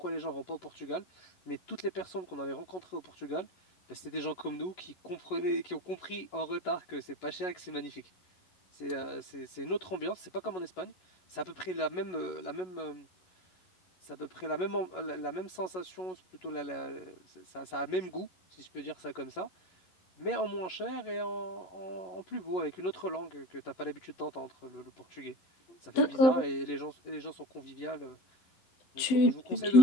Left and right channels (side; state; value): right; late; 11 ms